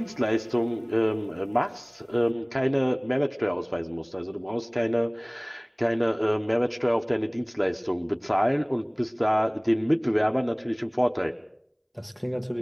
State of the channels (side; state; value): both; identical; correlation 1.00